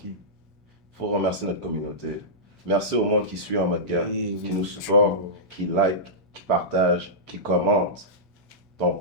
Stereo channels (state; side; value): normal; both; correlation -0.15